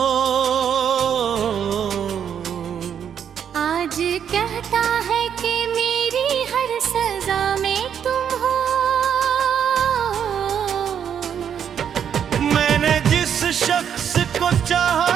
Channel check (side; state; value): left; quieter; 8.4 dB